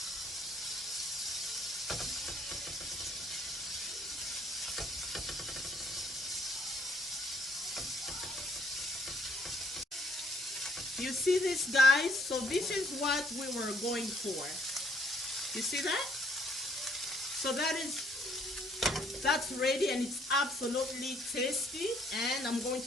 You see this, guys? So this is what we were going for. You see that? So that's ready, and it's absolutely tasty. And I'm going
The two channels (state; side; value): normal; both; correlation 0.66